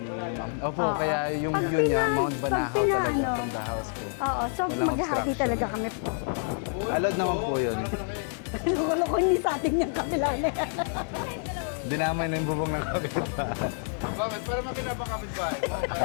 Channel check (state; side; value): silent; right; 59 dB below the other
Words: Ma'am. Opo, Oo. kaya yung Pag view niya, pina- Mount pag Banahaw pina- talaga ano. from the house po. Oo, so Walang maghahati obstruction. talaga kami. Allowed naman po yun. Loko-loko hindi sa atin yung kabila na yan. Dinamay na yung bubong ng kapitbahay. Bakit? Para makinapakapit ba?